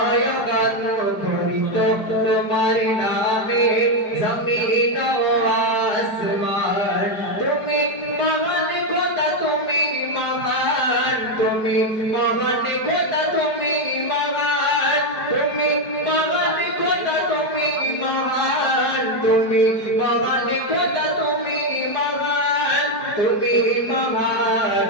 গান মুখরিত তোমার নামে জমিন ও আসমান তুমি মহান খোদা তুমি মহান তুমি মহান খোদা তুমি মহান তুমি মহান খোদা তুমি মহান তুমি মহান খোদা তুমি মহান তুমি মহান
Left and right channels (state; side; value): late; right; 4.8 ms